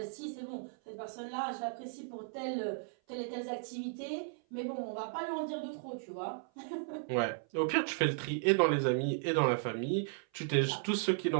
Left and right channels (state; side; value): silent; left; 54 dB below the other